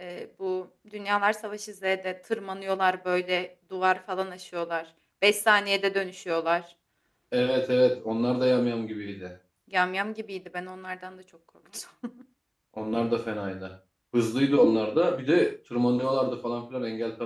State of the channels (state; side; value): identical; both; correlation 1.00